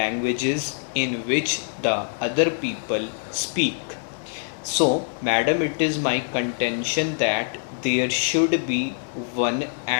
in which the other people speak. So, madam, it is my contention that there should be one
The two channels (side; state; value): right; silent; digital silence